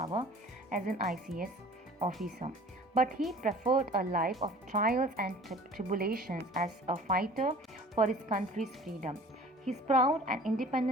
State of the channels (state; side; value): normal; both; correlation 0.46